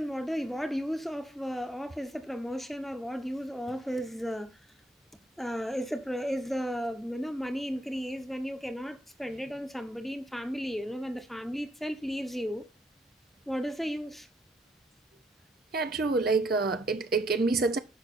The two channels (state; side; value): normal; both; correlation 0.72